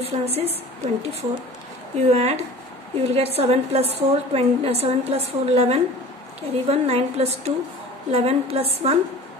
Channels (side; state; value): both; normal; correlation 0.41